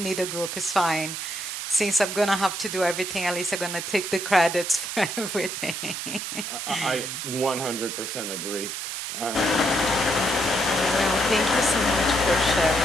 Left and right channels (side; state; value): right; noise; hiss, 5 dB below the sound